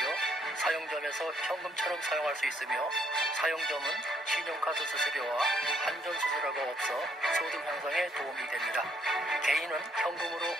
사용점에서 현금처럼 사용할 수 있으며 사용점은 신용카드 수수료와 한전 수수료가 없어 소득 향상에 도움이 됩니다. 개인은 현금으로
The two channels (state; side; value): normal; both; correlation 0.69